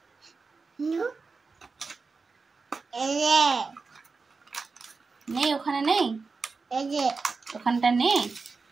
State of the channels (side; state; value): left; quieter; 4.4 dB